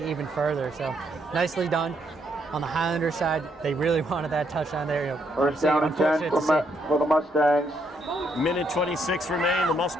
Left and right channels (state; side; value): normal; both; correlation 0.74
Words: further. So nicely done. On the Highlander side, they really wanted that touchdown there. First down and 10 for the Mustangs. Minute 26 remain. The